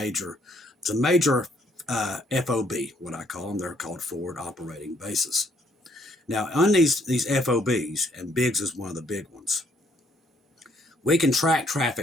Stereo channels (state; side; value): normal; both; correlation 0.68